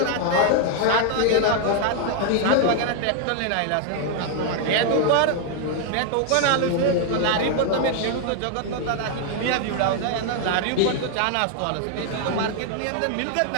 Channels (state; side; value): different; both; correlation 0.00